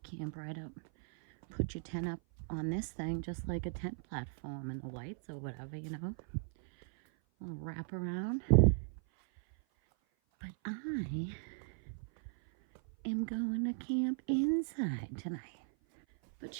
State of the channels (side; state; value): left; silent; 53 dB below the other